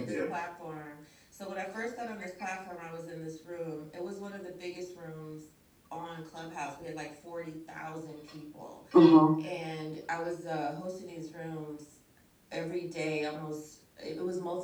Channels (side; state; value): both; identical; correlation 1.00